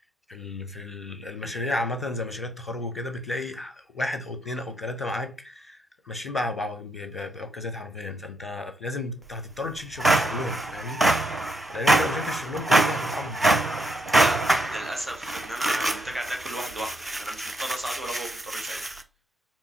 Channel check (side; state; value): both; normal; correlation 0.76